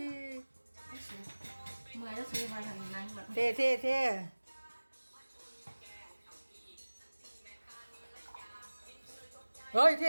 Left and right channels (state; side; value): inverted; both; correlation -1.00